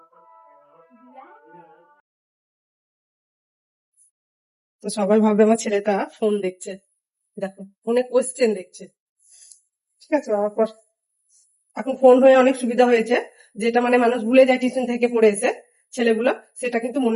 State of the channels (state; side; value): identical; both; correlation 1.00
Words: তো সবাই ভাববে আমার ছেলেটা ফোন দেখছে, দেখো ফোনে কোশ্চেন দেখছে। ঠিক আছে, এখন ফোন হয়ে অনেক সুবিধা হয়েছে, যেটা মানে মানুষ ভুলে যায় টিউশন থেকে পড়ে এসে ছেলেগুলো, সেটা কিন্তু